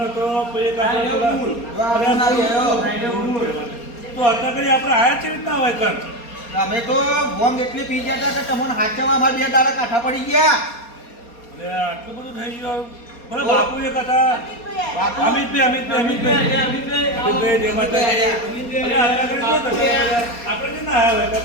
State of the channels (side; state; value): right; late; 4.2 ms